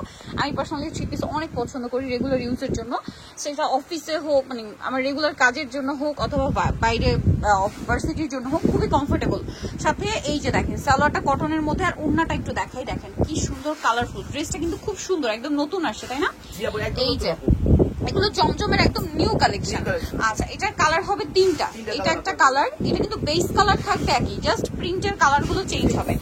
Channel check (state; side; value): identical; both; correlation 1.00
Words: আমি পার্সোনালি থ্রি পিস অনেক পছন্দ করি রেগুলার ইউজের জন্য। সেটা অফিসে হোক, মানে আমার রেগুলার কাজের জন্য হোক, অথবা বাইরে ভার্সিটির জন্য হোক, খুবই কমফোর্টেবল। সাথে এই যে দেখেন সালোয়ারটা কটনের মধ্যে, আর ওড়নাটা একটু দেখাই, দেখেন কি সুন্দর কালারফুল। ড্রেসটা কিন্তু খুব সুন্দর, একদম নতুন আসছে, তাই না? এই যে এগুলো জমজমের একদম নিউ কালেকশন। আচ্ছা, এটার কালার হবে তিনটা। এটা একটা কালার, এটা কিন্তু বেস কালার থাকবে একই, জাস্ট প্রিন্টের কালার গুলো চেঞ্জ হবে।